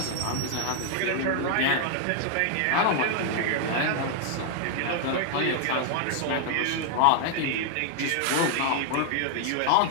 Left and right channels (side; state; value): both; different; correlation 0.00